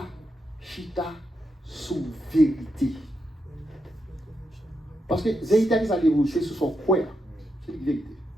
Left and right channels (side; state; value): both; normal; correlation 0.84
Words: chita sous vérité. Parce que vérité, c'est sous son quoi. C'est la vérité.